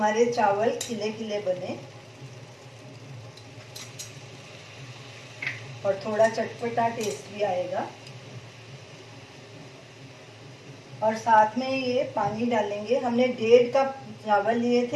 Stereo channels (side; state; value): both; identical; correlation 1.00